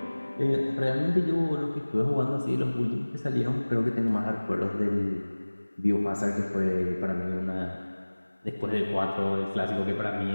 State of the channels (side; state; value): both; inverted; correlation -1.00